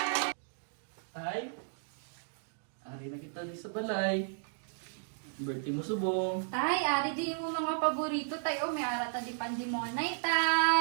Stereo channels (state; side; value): silent; left; digital silence